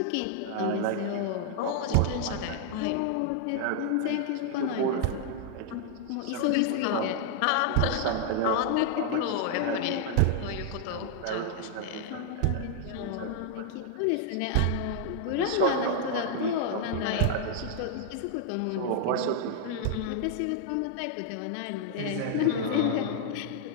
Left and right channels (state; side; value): different; both; correlation 0.00